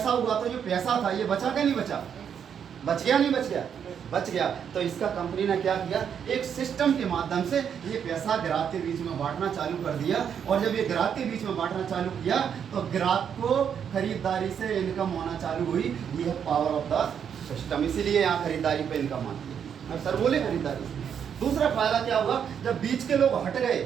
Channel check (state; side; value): quieter; left; 8.0 dB